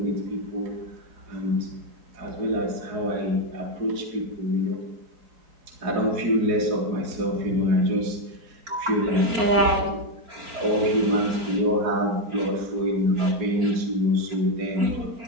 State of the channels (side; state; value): left; late; 4.4 ms